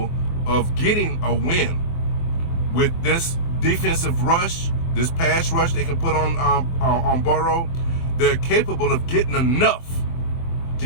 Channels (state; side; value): late; right; 24 ms